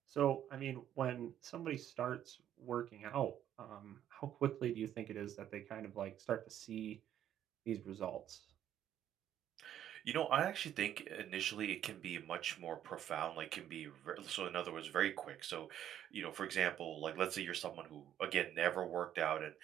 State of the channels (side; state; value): left; quieter; 10.8 dB